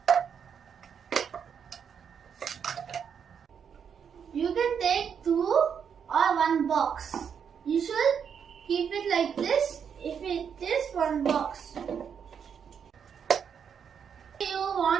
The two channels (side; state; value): left; quieter; 7.4 dB